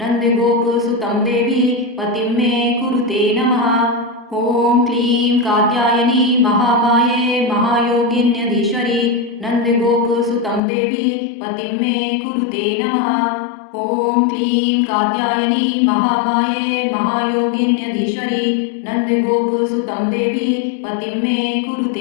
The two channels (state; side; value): drops out; right; at 10.6 s